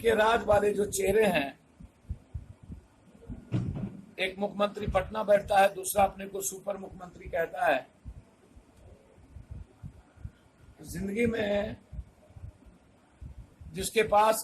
राज वाले जो चेहरे हैं, एक मुख्यमंत्री पटना बैठता है, दूसरा अपने को सुपर मुख्यमंत्री कहता है। जिंदगी में जिसके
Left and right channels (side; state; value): both; identical; correlation 1.00